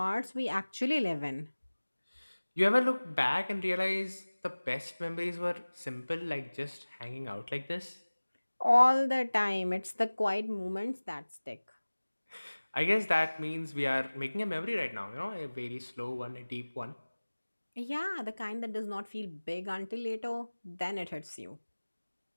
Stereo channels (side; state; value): both; inverted; correlation -1.00